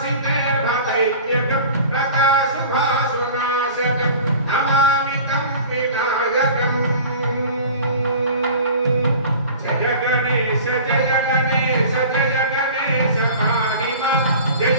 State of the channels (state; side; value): inverted; both; correlation -0.40